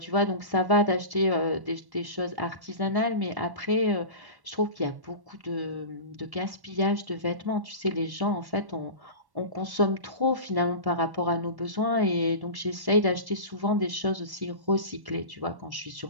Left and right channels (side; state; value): left; late; 1.1 ms